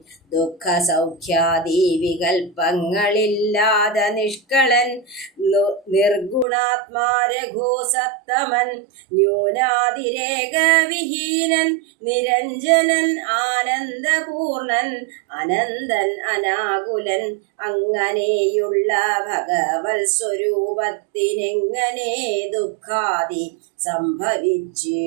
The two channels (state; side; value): drops out; left; at 6.5 s